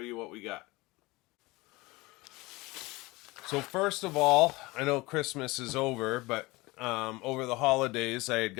what we got. So first of all, I know Christmas is over, but over the holidays I had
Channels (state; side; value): quieter; right; 22.1 dB